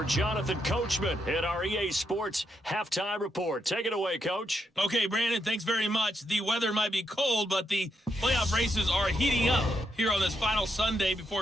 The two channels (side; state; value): both; normal; correlation 0.80